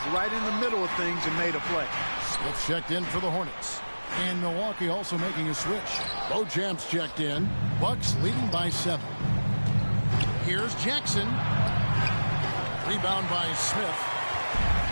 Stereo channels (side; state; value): both; inverted; correlation -1.00